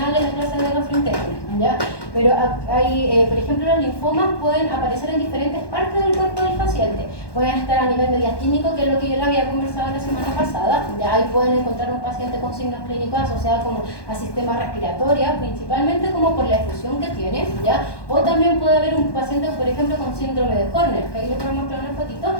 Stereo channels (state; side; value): late; right; 1.1 ms